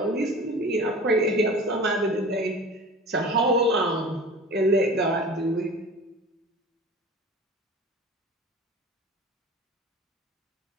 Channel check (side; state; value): both; normal; correlation 0.38